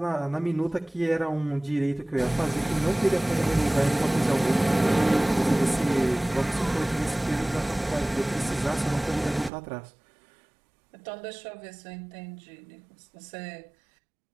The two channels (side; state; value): left; drops out; at 9.5 s